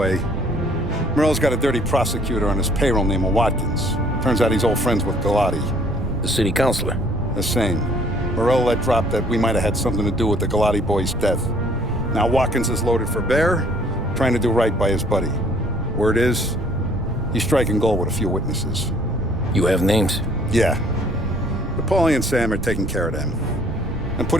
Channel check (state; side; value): noise; right; rumble, 6 dB below the sound